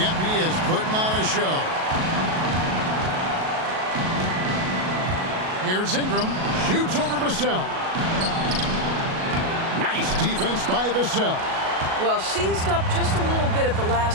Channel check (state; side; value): late; left; 37 ms